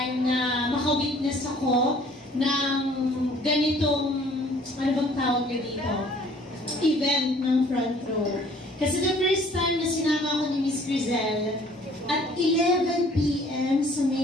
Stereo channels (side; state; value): both; normal; correlation 0.55